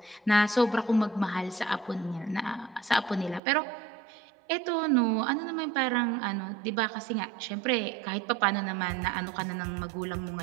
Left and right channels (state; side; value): drops out; left; at 3.4 s